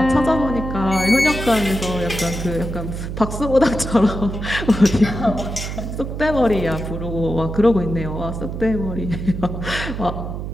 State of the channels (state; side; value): noise; right; hum, 6 dB below the sound